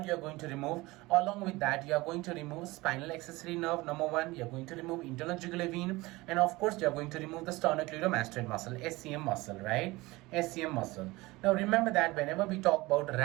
you're going to remove. Along with that, you are going to remove spinal accessory nerve, number one. You're going to remove internal jugular vein, and of course, you're going to remove the sternocleidomastoid muscle, SCM muscle, right? SCM muscle. Now, remember that whenever we talk about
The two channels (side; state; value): left; quieter; 21.1 dB